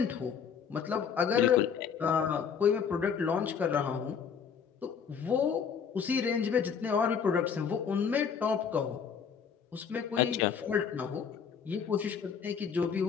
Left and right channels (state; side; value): quieter; right; 6.8 dB